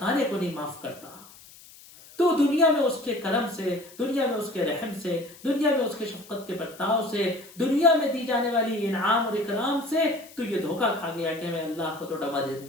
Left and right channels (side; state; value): left; noise; hiss, 21 dB below the sound